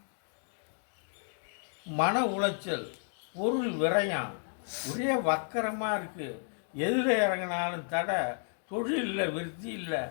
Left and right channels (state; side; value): silent; right; 56 dB below the other